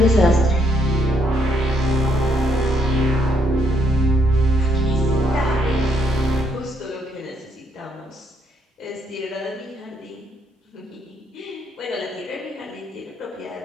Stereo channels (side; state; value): both; normal; correlation 0.73